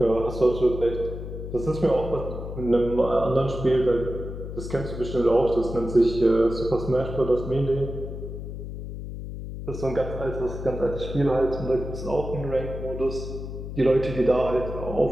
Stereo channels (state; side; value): noise; left; hum, 8 dB below the sound